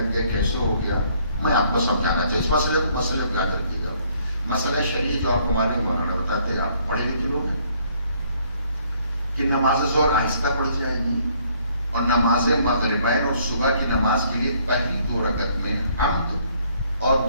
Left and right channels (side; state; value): both; inverted; correlation -0.65